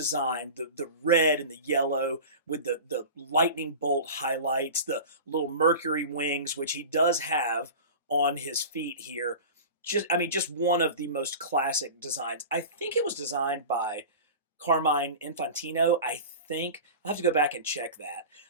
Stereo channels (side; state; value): both; inverted; correlation -0.33